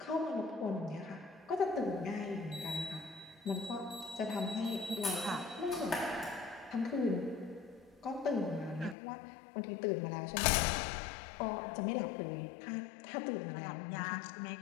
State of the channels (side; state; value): right; drops out; at 9.0 s